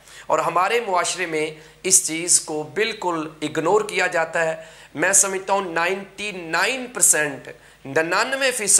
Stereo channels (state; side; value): identical; both; correlation 1.00